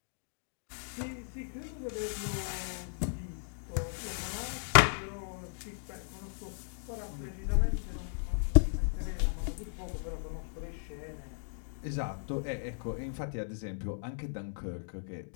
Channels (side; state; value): right; silent; digital silence